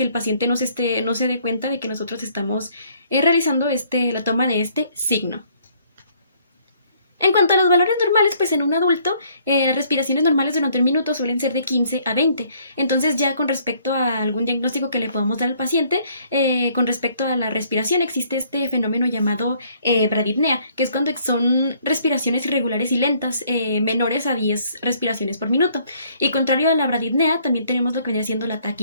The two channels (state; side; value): inverted; both; correlation -0.63